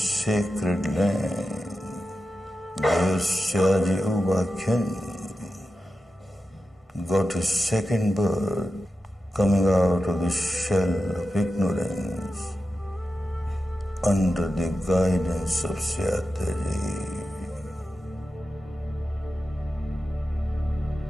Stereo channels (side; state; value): both; normal; correlation 0.91